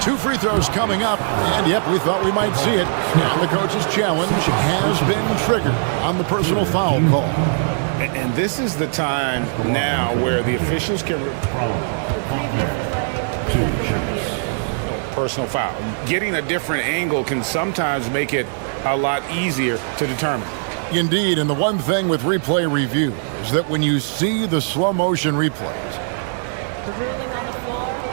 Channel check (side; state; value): left; silent; 57 dB below the other